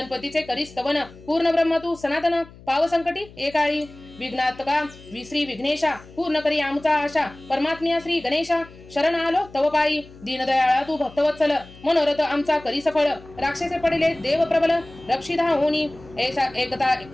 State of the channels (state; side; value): noise; left; hum, 21 dB below the sound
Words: करी स्तवन पूर्ण ब्रह्म तू सनातन पाव संकटी एकाळी विघ्नात्मका श्री विघ्नेशा पूर्ण करी आमचा आशा परमात्म्या श्री गणेशा शरण आलो तव पायी दीनदयाळा तू भक्तवत्सल मनोरथ आमचा करी सफळ राक्षसे पडले देव प्रबल रक्षिता होनी ऐसा